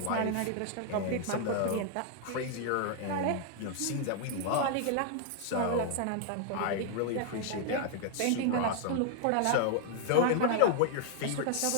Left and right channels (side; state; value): both; different; correlation 0.00